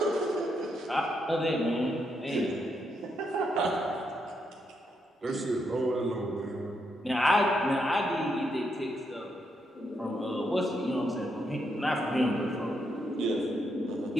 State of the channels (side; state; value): both; normal; correlation 0.80